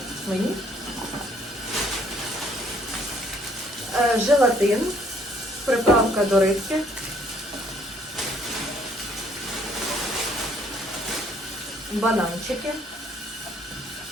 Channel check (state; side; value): normal; both; correlation 0.64